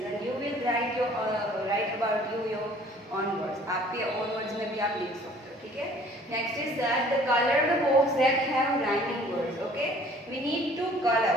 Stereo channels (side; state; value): both; normal; correlation 0.54